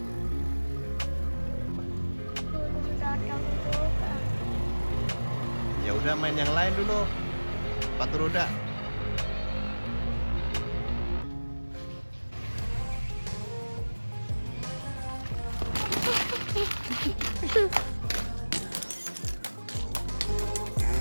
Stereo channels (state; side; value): inverted; both; correlation -1.00